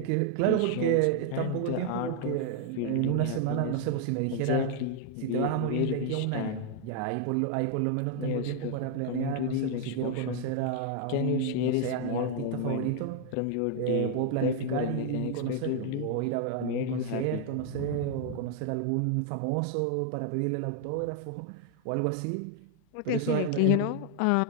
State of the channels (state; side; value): different; both; correlation 0.00